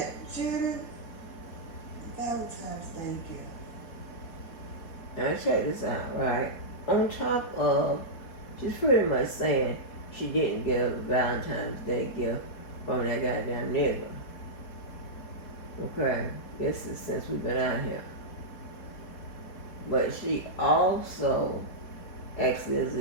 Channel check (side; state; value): right; late; 4.2 ms